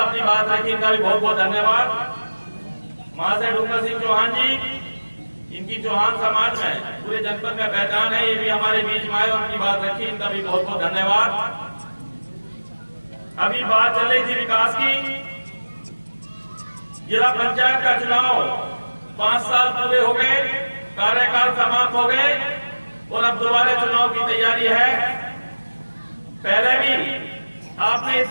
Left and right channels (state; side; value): inverted; both; correlation -1.00